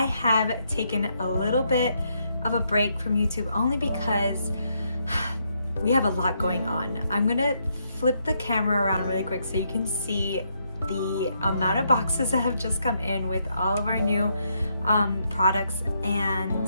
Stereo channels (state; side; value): inverted; both; correlation -0.76